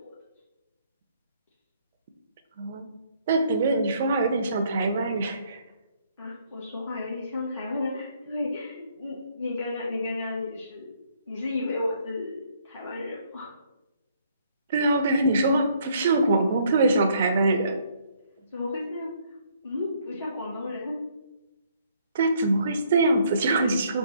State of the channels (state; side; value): inverted; both; correlation -0.67